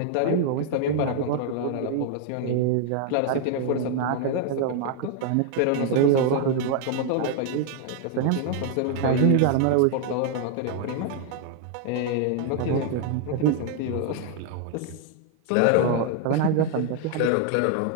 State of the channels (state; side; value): different; both; correlation 0.00